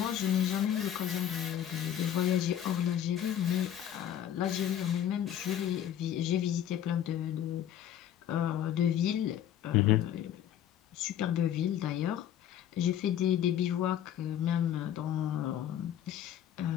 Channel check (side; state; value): right; quieter; 10.5 dB